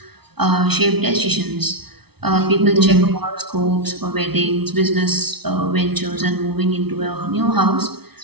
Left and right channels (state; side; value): late; left; 0.97 ms